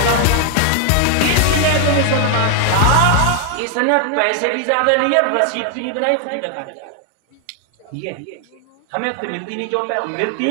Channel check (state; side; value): different; both; correlation 0.00